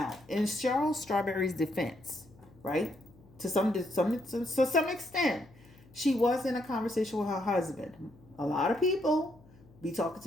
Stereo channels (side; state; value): left; noise; hum, 25 dB below the sound